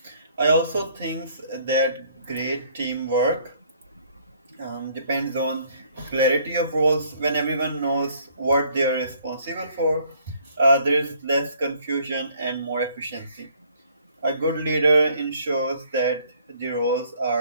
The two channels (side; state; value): both; inverted; correlation -0.62